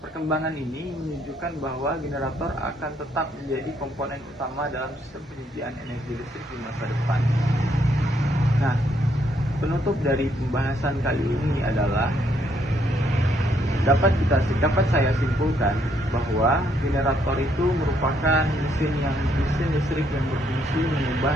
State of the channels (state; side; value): normal; both; correlation 0.71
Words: Perkembangan ini menunjukkan bahwa generator akan tetap menjadi komponen utama dalam sistem penyediaan energi listrik di masa depan. Nah, penutup dari pembahasan kali ini adalah dapat saya simpulkan bahwa generator itu merupakan mesin listrik yang berfungsi mengubah